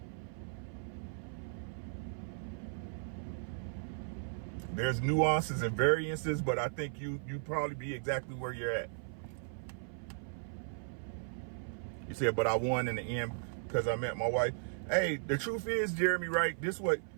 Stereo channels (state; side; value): silent; left; 53 dB below the other